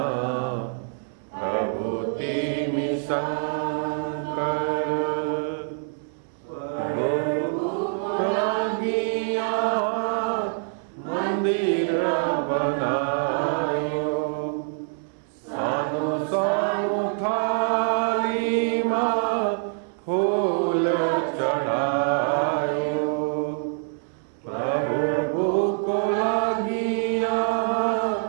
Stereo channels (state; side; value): silent; left; 61 dB below the other